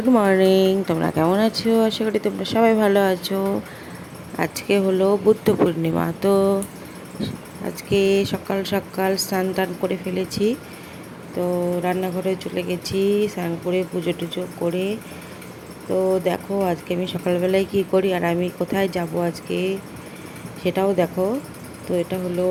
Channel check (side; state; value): both; identical; correlation 1.00